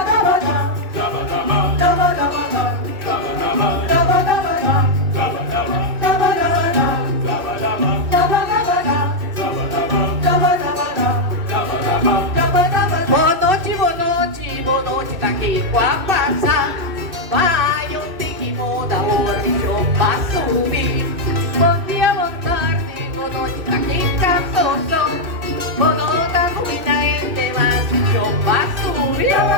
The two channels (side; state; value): left; late; 2.6 ms